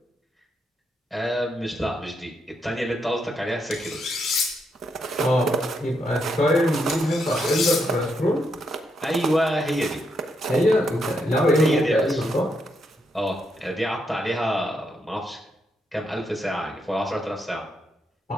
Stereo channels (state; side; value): normal; both; correlation 0.79